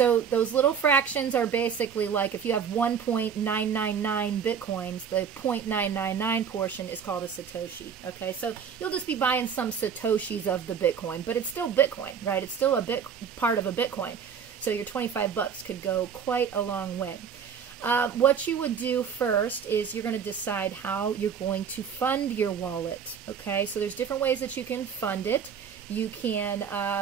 those little fractions are basically like if you have 1.999 Bitcoins, the 0.999 portion is called a Satoshi, okay? So you'll just be buying some Satoshis of the Bitcoin, but it's still Bitcoin, right? It's still a part of a Bitcoin. So your 25 bucks could go quite a long way. What you would do first is you're going to decide how you're going to fund your wallet. Okay, so there's different ways that you can fund it. You can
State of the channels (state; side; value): quieter; left; 7.2 dB